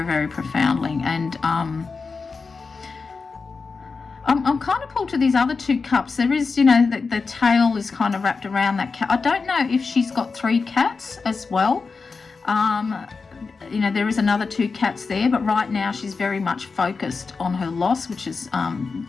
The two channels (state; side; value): quieter; right; 4.6 dB